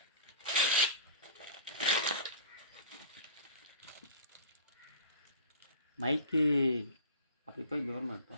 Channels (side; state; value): both; inverted; correlation -0.40